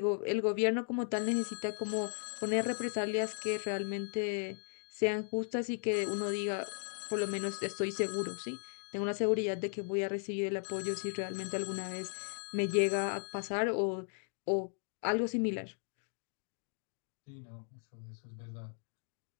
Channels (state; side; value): silent; right; 54 dB below the other